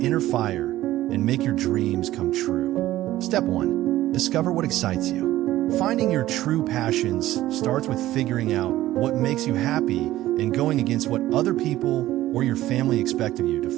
fire and make your dreams come true. Step 1. Discover what excites you. Finding your true passions starts with figuring out what makes you happy and going against what other people or your family expect of you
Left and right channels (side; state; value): left; quieter; 15.0 dB